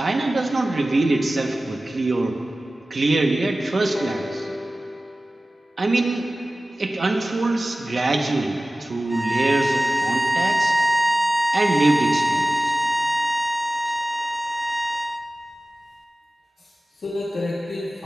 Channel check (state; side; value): normal; both; correlation 0.97